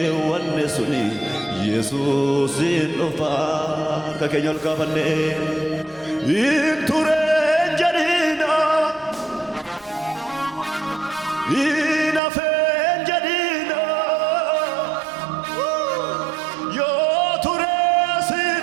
suni, Yesuus dhufa. Harka keenya ol kaafannee. Hin tureen jedhina, hin hafeen jedhina, yoo turee sin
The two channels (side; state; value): left; drops out; at 12.2 s